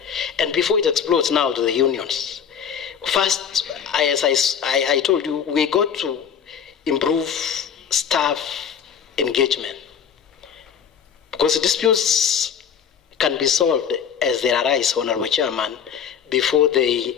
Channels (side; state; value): right; quieter; 7.6 dB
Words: And before it explodes now to the unions. First, as I told you, we got to improve staff engagement, because disputes can be solved as they arise, Honorable Chairman, before they